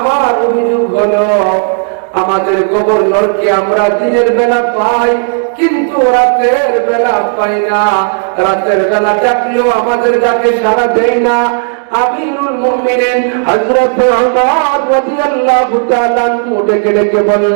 অভিযোগ হলো, আমাদের গভর্নরকে আমরা দিনের বেলা পাই, কিন্তু রাতের বেলা পাই না। রাতের বেলা ডাকলেও আমাদের ডাকে সাড়া দেয় না। আমিরুল মুমিনিন হযরত ওমর রাদিয়াল্লাহু তাআলা ডেকে ডেকে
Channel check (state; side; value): silent; left; digital silence